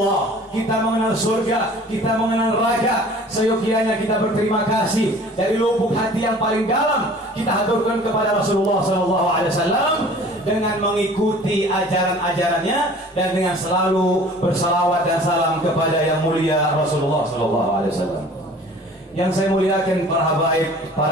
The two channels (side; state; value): both; normal; correlation 0.47